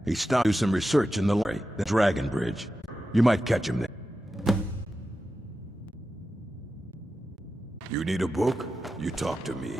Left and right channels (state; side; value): normal; both; correlation 0.92